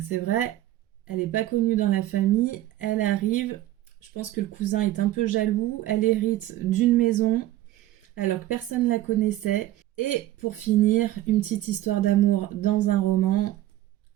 c'est vrai, elle n'est pas connue dans la famille, elle arrive, je pense que le cousin est un peu jaloux, elle hérite d'une maison alors que personne ne la connaissait. Et pour finir, une petite histoire d'amour dans un roman,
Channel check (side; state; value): left; quieter; 14.6 dB